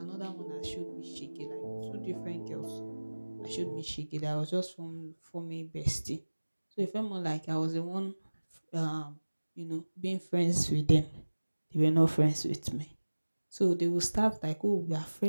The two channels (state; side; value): inverted; both; correlation -1.00